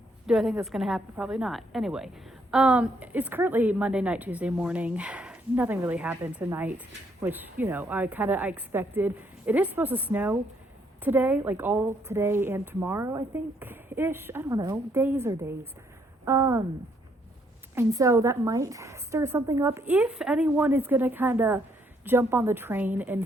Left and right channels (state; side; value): normal; both; correlation 0.70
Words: Do I think that's going to happen? Probably not. Anyway, it's currently Monday night, Tuesday morning. Nothing really happened tonight, which, I expected. It is supposed to snow today, like all today and tomorrow, I think, ish. I don't know, days or days. And so that might stir something up if anyone is going to kind of jump on the train and